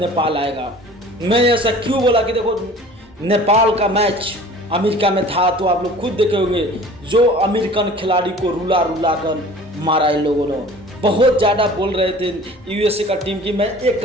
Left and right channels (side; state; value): both; normal; correlation 0.45